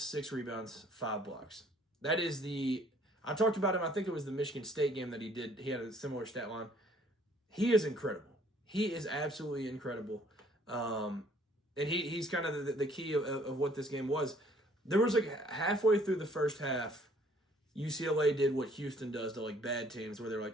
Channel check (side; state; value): both; normal; correlation 0.60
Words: 6 rebounds, 5 blocks. That is I talked about him, I think it was the Michigan State game that he did. He had a similar stat line. He is incredible. He is absolutely incredible. And he's kind of the key of what this game was. There was like halfway through the first half, UCLA did what Houston does to like bad teams, where they're